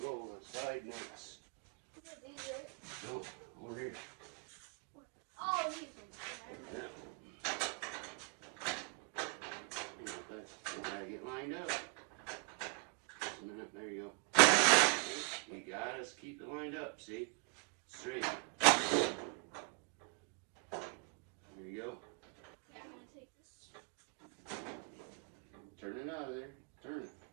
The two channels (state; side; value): quieter; left; 32.4 dB